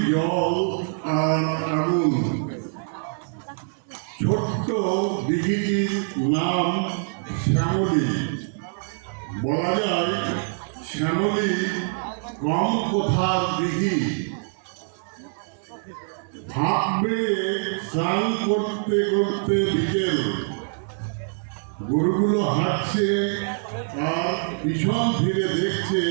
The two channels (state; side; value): silent; left; digital silence